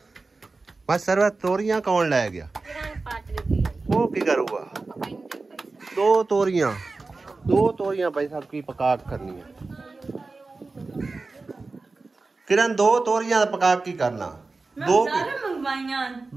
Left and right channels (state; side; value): quieter; left; 3.7 dB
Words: ਬਸ ਸਰਵਾ ਤੋਰੀਆਂ ਕੌਣ ਲੈ ਗਿਆ? ਉਹ ਕੀ ਕਰੂਗਾ? ਦੋ ਤੋਰੀਆਂ ਭਾਈ ਸਾਹਿਬ ਕੀ ਪਕਾ ਕਰਨੀ ਹੈ? किरण दो तोरियां पका की करना? दो